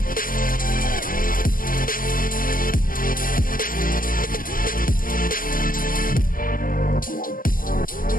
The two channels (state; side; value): late; right; 0.41 ms